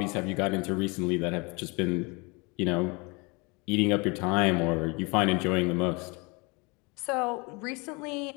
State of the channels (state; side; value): quieter; right; 28.5 dB